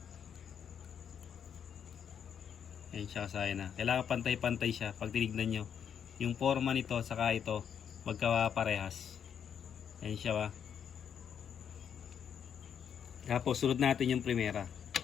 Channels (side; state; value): right; quieter; 8.1 dB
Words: Yan siya kasayan kailangan pantay-pantay siya. Pag tinignan nyo yung forma nito saka ito magkaparehas. Yan siya Tapos sunod natin yung primera.